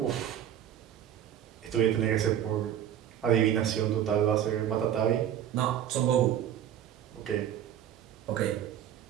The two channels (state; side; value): quieter; left; 10.2 dB